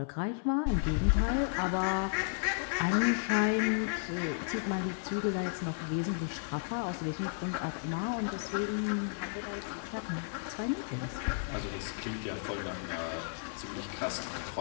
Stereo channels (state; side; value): silent; right; 55 dB below the other